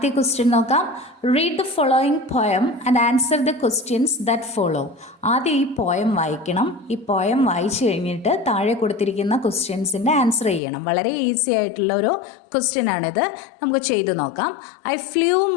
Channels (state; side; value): drops out; right; at 10.6 s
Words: ക്വസ്റ്റ്യൻ നോക്കാം. Read the following poem and answer the questions that follow. ആദ്യം ഈ പോയം വായിക്കണം. ഈ പോയം വായിച്ചു കഴിഞ്ഞിട്ട് താഴെ കൊടുത്തിരിക്കുന്ന ക്വസ്റ്റ്യൻസിൻ്റെ ആൻസർ ചെയ്യണം. വളരെ ഈസി ആയിട്ടുള്ള ഒരു ക്വസ്റ്റ്യൻ ആണിത്. നമുക്ക് ചെയ്തു നോക്കാം. I flew